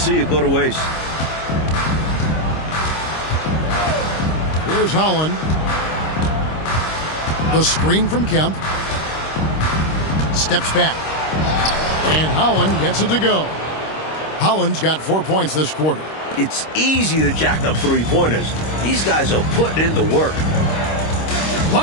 it go to waste. Here's Holland. The screen from Kemp. Steps back. And Holland gets it to go. Holland's got 4 points this quarter. It's easy to jack up three-pointers. These guys are putting in the work.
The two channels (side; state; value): right; late; 26 ms